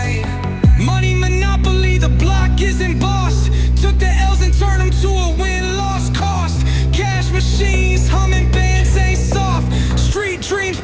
Money monopoly, the block isn't bossed. Took the L's and turned them to a win-loss cost. Cash machines, humming bands ain't soft. Street dreams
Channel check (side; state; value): both; identical; correlation 1.00